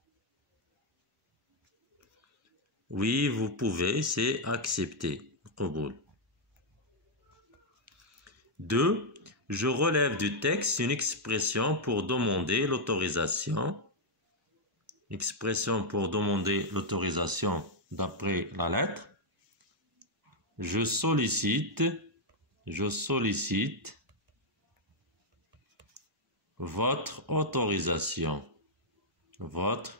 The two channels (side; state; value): both; normal; correlation -0.03